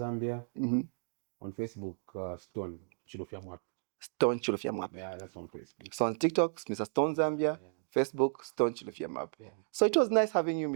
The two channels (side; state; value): left; silent; digital silence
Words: On Facebook, Stone Chilofia Mwap. Stone Chilofia Map. Yeah, that's on Facebook. So on TikTok, Mr. Stone Zambia. Yeah. Facebook, Stone Chilofia Map. Yeah. So it was nice having you,